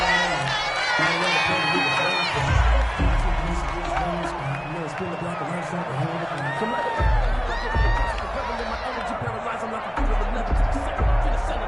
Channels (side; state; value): both; identical; correlation 1.00